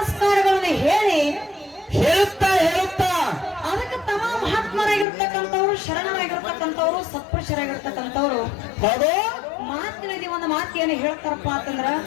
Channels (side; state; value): right; drops out; at 5.1 s